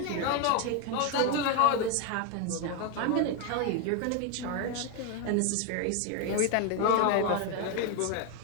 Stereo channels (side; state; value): both; different; correlation 0.01